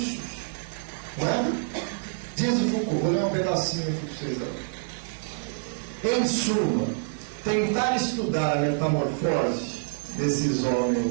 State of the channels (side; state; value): left; silent; digital silence